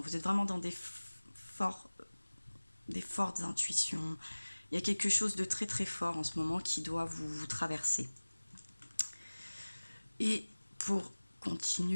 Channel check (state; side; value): inverted; both; correlation -1.00